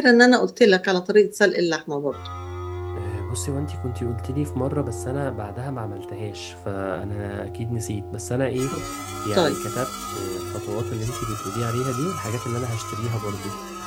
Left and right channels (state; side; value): identical; both; correlation 1.00